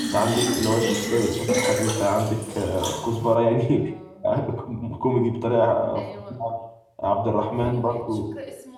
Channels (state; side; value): identical; both; correlation 1.00